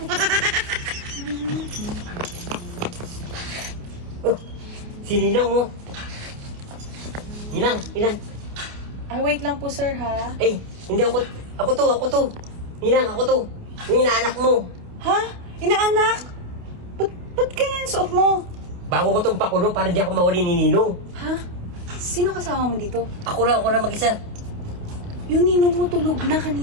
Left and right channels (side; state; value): left; late; 28 ms